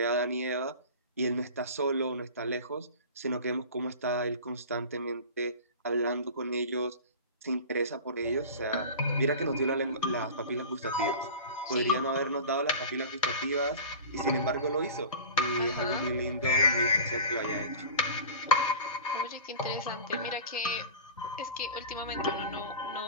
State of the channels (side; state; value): both; inverted; correlation -0.35